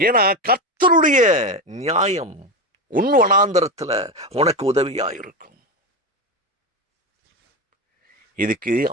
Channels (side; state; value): both; normal; correlation 0.17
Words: ஏன்னா கர்த்தருடைய நியாயம் உன் வனாந்தரத்துல உனக்கு உதவியா இருக்கும். இதுக்கு